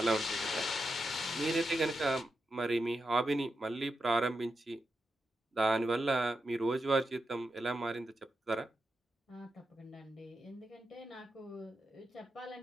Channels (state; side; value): normal; both; correlation 0.87